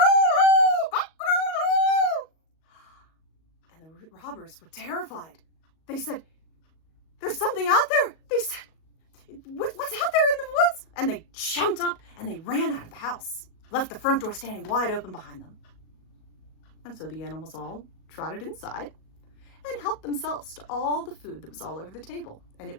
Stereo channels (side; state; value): right; late; 37 ms